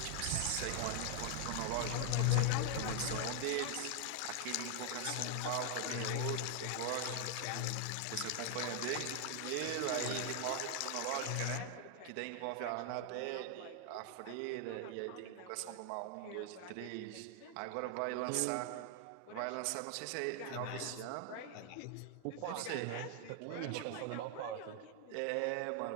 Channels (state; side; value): different; both; correlation 0.00